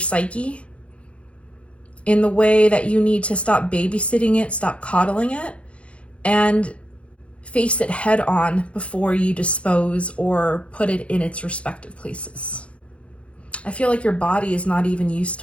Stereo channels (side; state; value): right; late; 0.061 ms